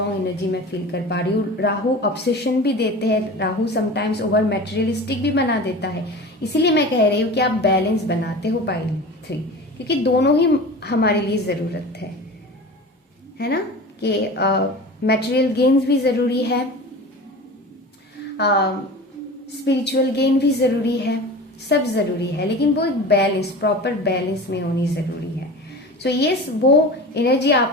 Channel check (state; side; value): normal; both; correlation 0.34